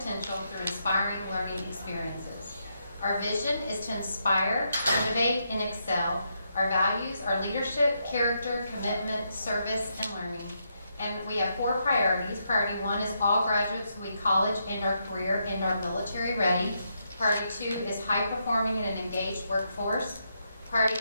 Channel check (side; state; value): both; inverted; correlation -0.80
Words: through inspiring learning experiences. Our vision is to inspire, innovate, and excel. Our values are leadership, character, commitment, service, and learning. And we have 4 priorities. Priority 1 is all graduates will be college and our career and our military ready. Priority 2 is high performing and an engaged workforce. Priority